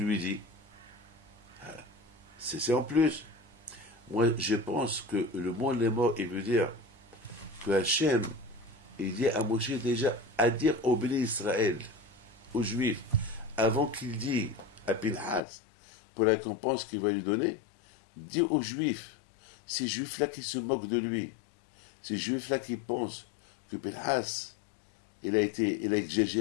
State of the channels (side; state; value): right; drops out; at 15.4 s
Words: dis? C'est en plus. Moi, je pense que le mot les morts, il veut dire que Hachem, il dit à Moshe déjà à dire au béni Israël, aux Juifs, avant qu'il dise à Pinhas, pour la récompense qu'il va lui donner, dit aux Juifs, ces Juifs-là qui se moquent de lui, ces Juifs-là qui pensent que Pinhas, il a